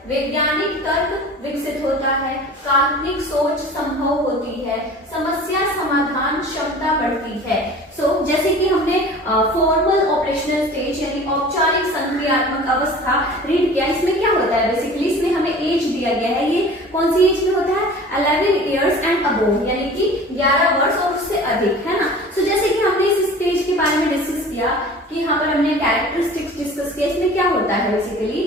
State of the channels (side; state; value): both; normal; correlation 0.42